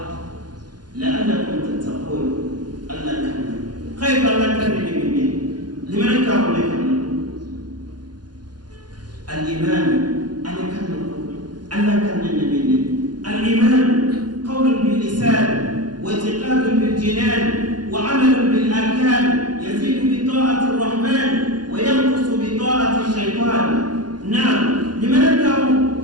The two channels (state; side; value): late; left; 0.70 ms